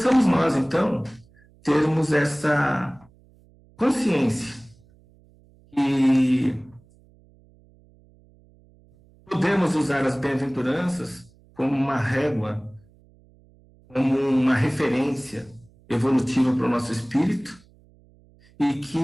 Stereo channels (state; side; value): noise; right; hum, 29 dB below the sound